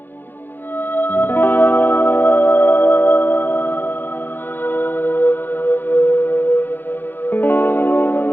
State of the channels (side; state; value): right; late; 0.093 ms